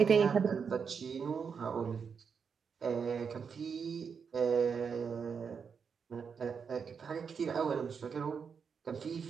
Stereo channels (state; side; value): quieter; left; 6.2 dB